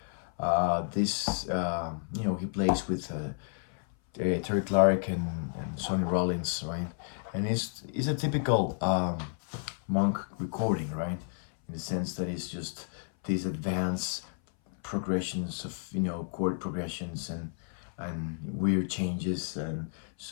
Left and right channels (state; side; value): silent; right; 57 dB below the other